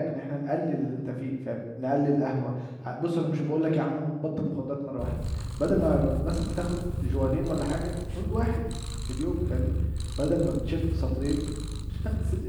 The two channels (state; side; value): identical; both; correlation 1.00